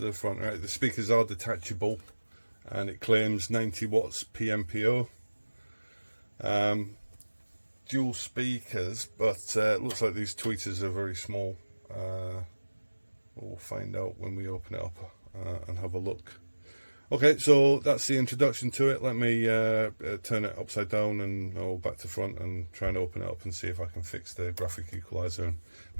the front. Right, the speakers are detachable, and it claims 90 watts PMPO. Dual speakers, but it looks like these tweeters are very small. We'll find out when we open it up and have a look. Okay, so that's the introduction to it. Let me turn it upside down and back to front and try and open it up and see if I can fix the graphic equalizer and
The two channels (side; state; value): both; inverted; correlation -1.00